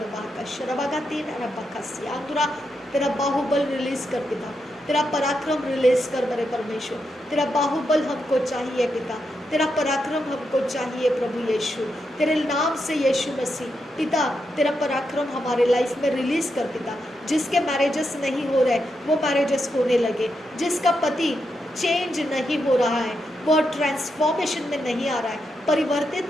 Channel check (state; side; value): normal; both; correlation 0.84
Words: का शरबागातीन रबा का सियांदुरा। तेरा बाहुबल रिलीज कर पिता, तेरा पराक्रम रिलीज कर मेरे परमेश्वर। तेरा बाहुबल हमको चाहिए पिता, तेरा पराक्रम हमको चाहिए प्रभु यीशु। तेरे नाम से यीशु मसीह पिता, तेरा पराक्रम हमारे लाइफ में रिलीज कर पिता। जिसके मैरिजेस नहीं हो रहे वो मैरिजेस होने लगे, जिसका पति चेंज नहीं हो रहा है, वो ट्रांसफॉर्मेशन में नहीं आ रहा है,